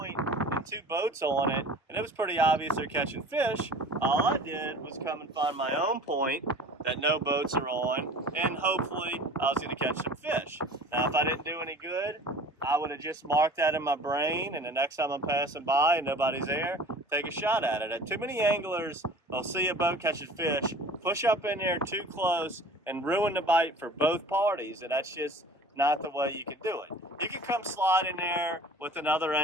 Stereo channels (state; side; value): normal; both; correlation 0.43